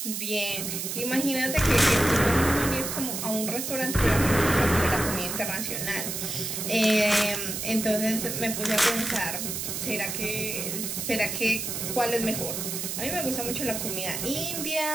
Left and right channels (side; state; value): right; noise; hiss, 4 dB below the sound